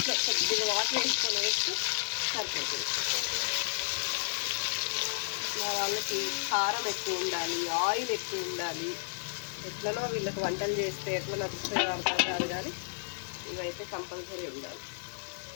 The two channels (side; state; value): right; silent; digital silence